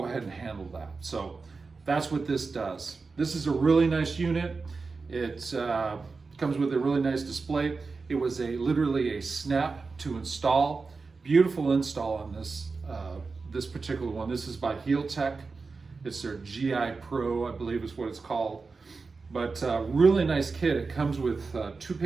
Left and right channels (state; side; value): quieter; left; 4.3 dB